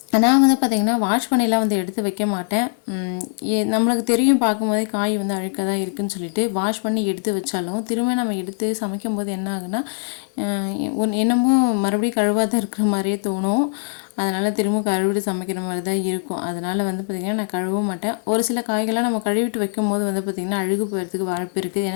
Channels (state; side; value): silent; right; digital silence